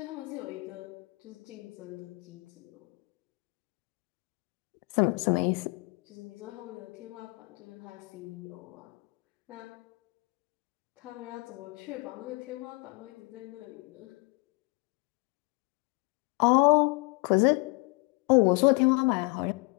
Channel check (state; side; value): quieter; right; 27.8 dB